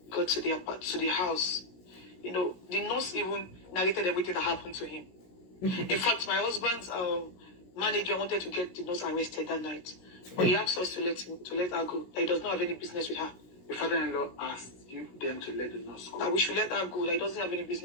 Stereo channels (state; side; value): late; right; 16 ms